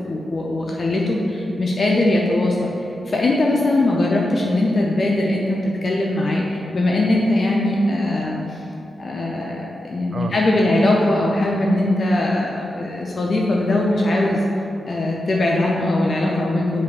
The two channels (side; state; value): both; normal; correlation 0.88